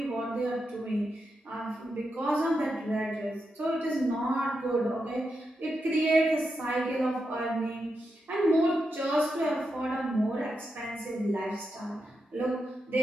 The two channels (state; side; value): normal; both; correlation 0.86